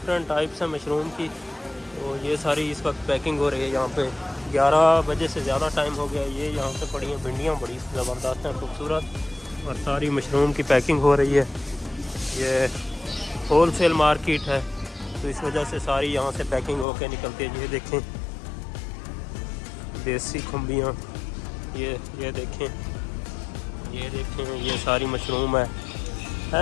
टाइप्स हैं मशरूम की, तो ये सारी इस वक्त पैकिंग हो रही है। यहाँ पे 11 बजे से ज़्यादा टाइम हो गया। ये यहाँ पे पड़ी हैं भिंडियाँ, बड़ी ज़बरदस्त हैं, खूबसूरत, और सारी मशरूम की पैकिंग हो रही है। ये होल सेल मार्केट है, तो इस वजह से सारी यहाँ से पैकिंग होकर निकलती है। ये देखें देसी खुम्बियाँ, ये देखें, ये सारी मशरूम है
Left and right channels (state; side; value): drops out; right; at 16.9 s